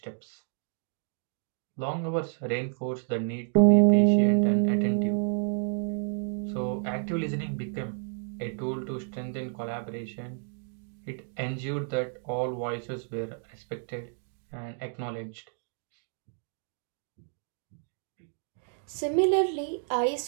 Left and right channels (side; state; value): left; silent; 58 dB below the other